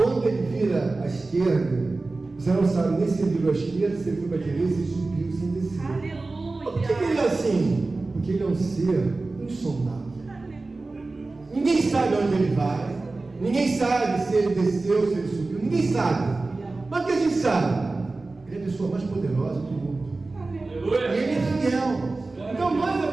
ele vira à esquerda, você não sabe nem se ele virou à esquerda, se ele foi para a direita, se ele subiu, se ele desceu. Aleluia. Por que ele é assim? Porque ele é um ser insondável. Ninguém sabe onde ele vai, ninguém sabe se ele desceu, se ele subiu, ninguém sabe. Mas o que a gente sabe? Ele é a pessoa mais poderosa do mundo. E ele é fiel. Então nós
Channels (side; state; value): left; quieter; 3.4 dB